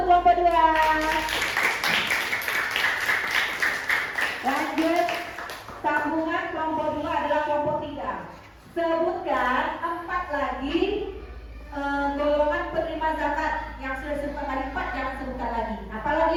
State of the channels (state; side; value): identical; both; correlation 1.00